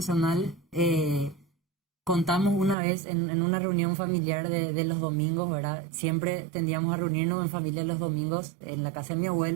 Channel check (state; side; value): drops out; left; at 2.8 s